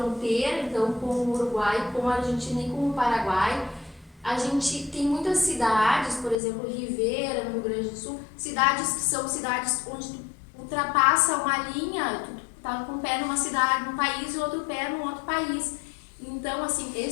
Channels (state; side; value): drops out; right; at 6.4 s